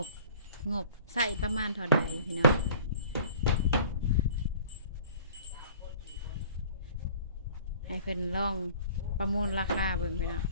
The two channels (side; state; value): both; inverted; correlation -0.47